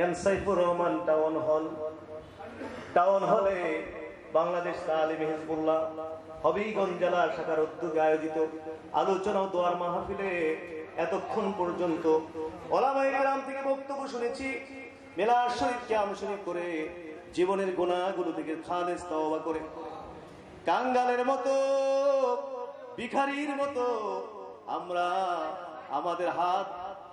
M Saifur Rahman town হলে Bangladesh তালিমে Hezbollah Habiganj জেলা শাখার উদ্যোগে আয়োজিত আলোচনা ও দোয়ার মাহফিলে এতক্ষণ পর্যন্ত ওলামায়ে কেরাম থেকে বক্তব্য শুনেছি। মিলাদ শরীফ কিয়াম শরীফ করে জীবনের গুনাহগুলো থেকে খালেস তওবা করে কাঙ্গালের মতো ভিখারির মতো আমরা আমাদের হাত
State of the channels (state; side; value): identical; both; correlation 1.00